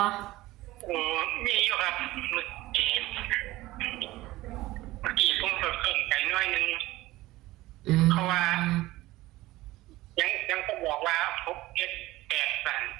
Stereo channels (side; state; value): left; quieter; 18.0 dB